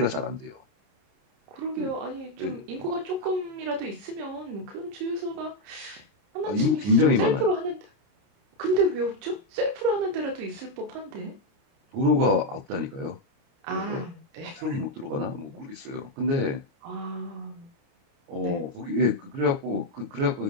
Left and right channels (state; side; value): late; left; 30 ms